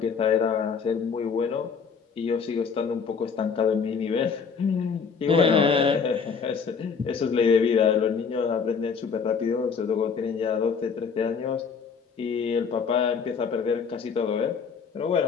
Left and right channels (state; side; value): quieter; right; 5.9 dB